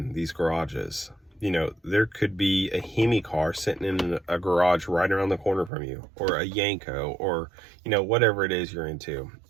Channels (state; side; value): drops out; left; at 5.7 s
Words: these garages. You know, there could be a Hemi car sitting in a garage right around the corner from you, or a Yanko, or, you know, whatever it is you're into,